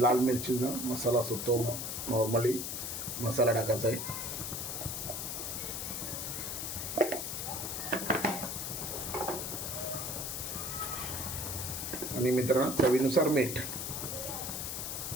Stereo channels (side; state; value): left; noise; hiss, 4 dB below the sound